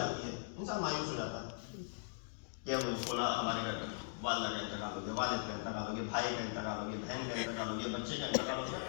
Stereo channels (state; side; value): silent; right; digital silence